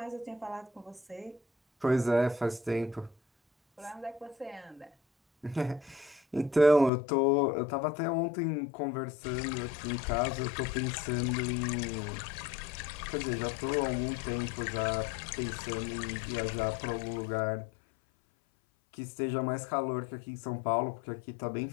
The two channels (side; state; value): right; drops out; at 6.9 s